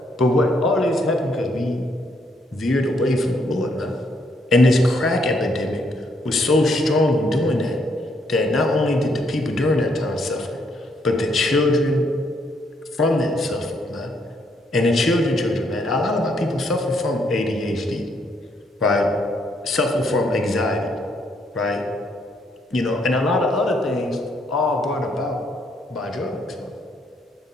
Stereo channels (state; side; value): normal; both; correlation 0.72